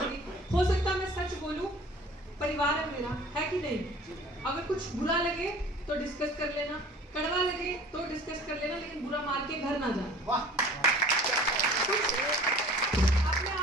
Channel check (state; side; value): normal; both; correlation 0.46